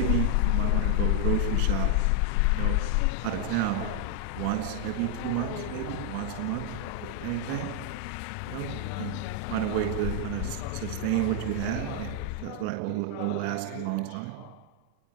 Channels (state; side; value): different; both; correlation 0.00